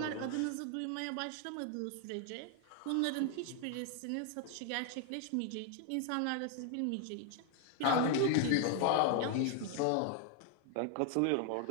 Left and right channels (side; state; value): both; different; correlation 0.00